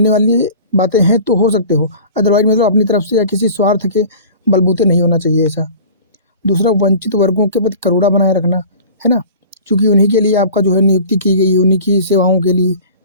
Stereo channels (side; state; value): both; inverted; correlation -0.42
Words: वाली बातें हैं तो हो सकते हो, अदरवाइज मतलब अपनी तरफ से या किसी स्वार्थ के बलबूते नहीं होना चाहिए ऐसा। दूसरा, वंचित वर्गों के प्रति करुणा बनाए रखना, है ना, क्योंकि उन्हीं के लिए आपका जो है नियुक्ति की गई है, उन्हीं की सेवाओं के लिए,